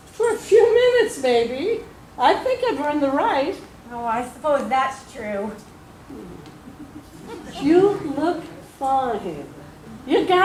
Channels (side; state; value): both; identical; correlation 1.00